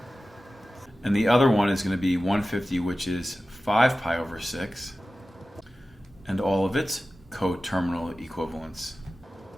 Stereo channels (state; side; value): normal; both; correlation 0.95